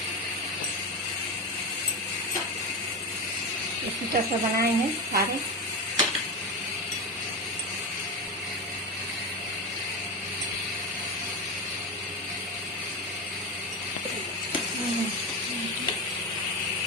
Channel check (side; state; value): both; normal; correlation 0.18